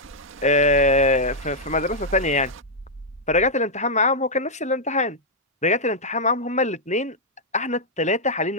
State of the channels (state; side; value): normal; both; correlation -0.06